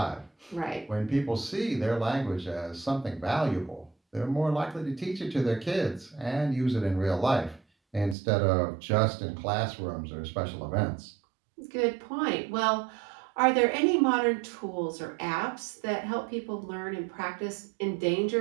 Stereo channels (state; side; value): drops out; left; at 8.2 s